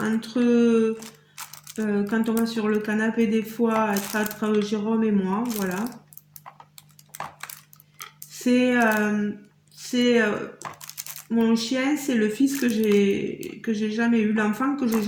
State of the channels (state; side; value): identical; both; correlation 1.00